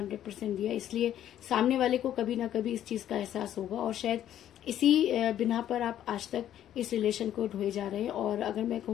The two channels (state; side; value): quieter; right; 11.3 dB